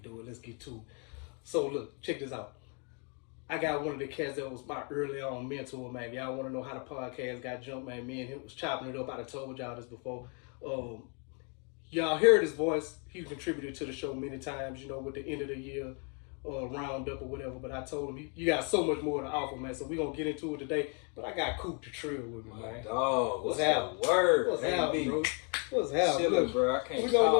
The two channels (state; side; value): quieter; right; 36.6 dB